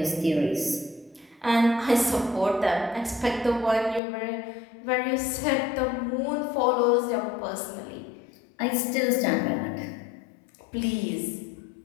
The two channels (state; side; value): drops out; right; at 4.0 s